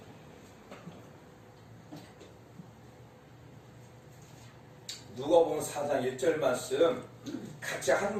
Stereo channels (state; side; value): identical; both; correlation 1.00